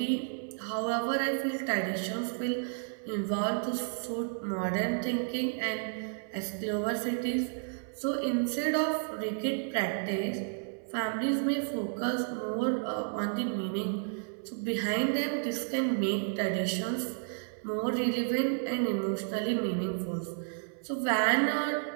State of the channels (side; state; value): left; silent; 57 dB below the other